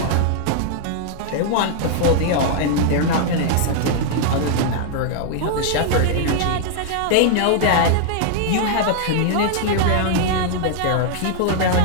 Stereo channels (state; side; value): different; both; correlation -0.01